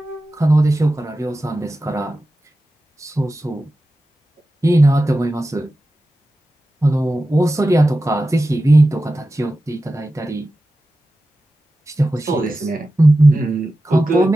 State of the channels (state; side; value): normal; both; correlation 0.93